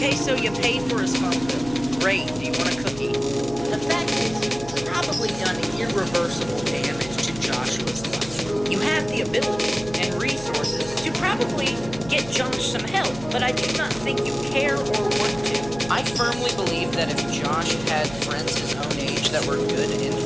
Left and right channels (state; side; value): noise; right; hum, 15 dB below the sound